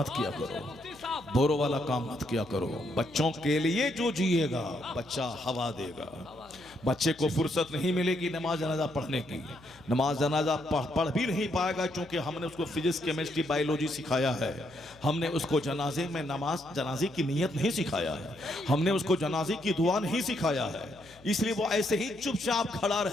किया करो, बोरो वाला काम मत किया करो। बच्चों के लिए जो जिएगा बच्चा हवा देगा। बच्चे को फुर्सत नहीं मिलेगी नमाज जनाजा पढ़ने की, नमाज जनाजा पढ़ भी नहीं पाएगा, क्योंकि हमने उसको फिजिक्स केमिस्ट्री बायोलॉजी सिखाया है, हमने उसको जनाजे में नमाज जनाजे की नीयत नहीं सिखाया है, हमने उसको जनाजे की दुआ नहीं सिखाया है। इसलिए वो ऐसे ही चुपचाप खड़ा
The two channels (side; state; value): left; noise; hum, 25 dB below the sound